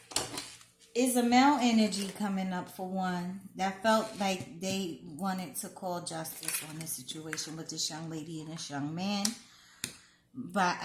is a male energy coming up, for one, that felt like they wanted to call justice on this situation with this young lady and this young man by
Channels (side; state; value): both; identical; correlation 1.00